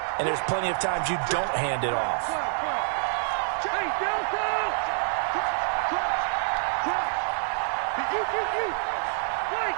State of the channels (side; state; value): left; silent; 60 dB below the other